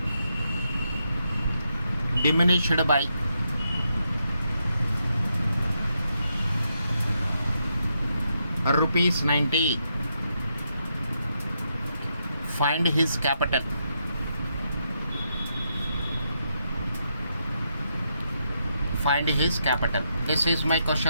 diminished by rupees 90. Find his capital. Find his capital. This is my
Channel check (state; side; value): inverted; both; correlation -0.81